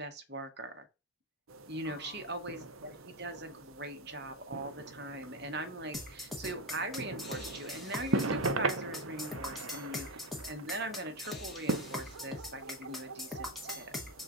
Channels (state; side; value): normal; both; correlation 0.11